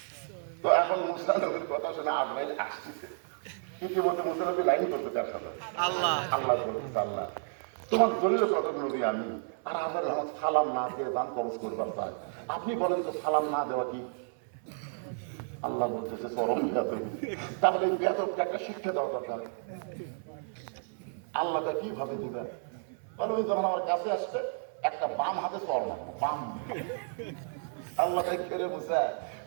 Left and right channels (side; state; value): left; silent; 57 dB below the other